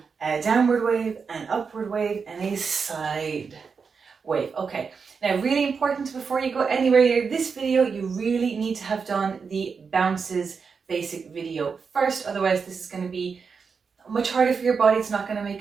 a downward wave, an upward wave, and a side wave. Okay, now really important before you go anywhere near this video, you really need to have done the bounces basic video first. Otherwise this is going to be much harder for your body. It's not going to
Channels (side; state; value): left; quieter; 5.5 dB